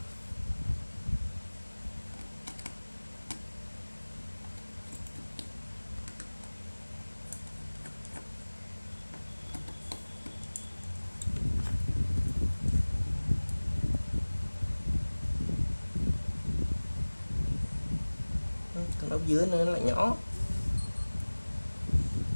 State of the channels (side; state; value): both; inverted; correlation -1.00